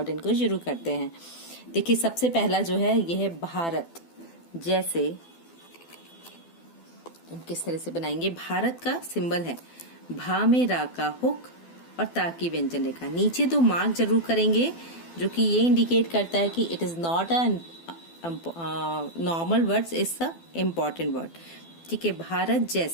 हैंड को शुरू करते हैं। देखिए सबसे पहला जो है यह है भारत। जैसे हम किस तरह से बनाएंगे, भारत का सिंबल है भा में रा का हुक और ता की व्यंजन रेखा। नीचे तो मार्क जरूर करेंगे जो कि ये इंडिकेट करता है कि it is not a normal words, it's a important word. ठीक है, भारत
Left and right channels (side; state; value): right; late; 12 ms